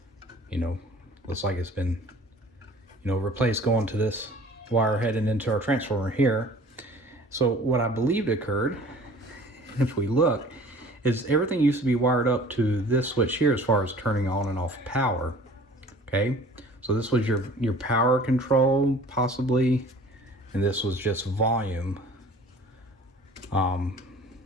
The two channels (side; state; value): both; normal; correlation 0.47